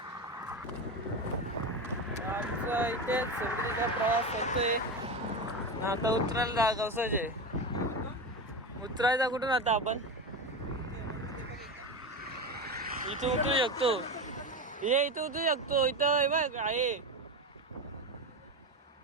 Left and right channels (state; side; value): normal; both; correlation 0.20